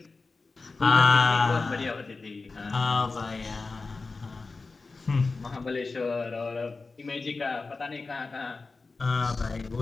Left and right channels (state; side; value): quieter; right; 3.9 dB